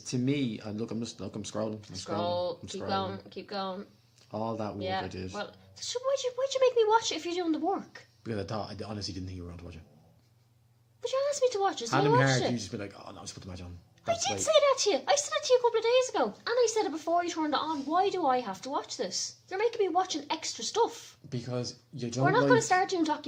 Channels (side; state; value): both; identical; correlation 1.00